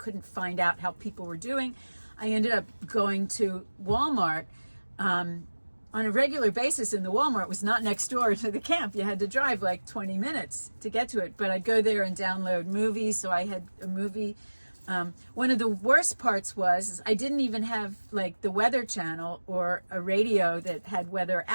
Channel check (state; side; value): inverted; both; correlation -1.00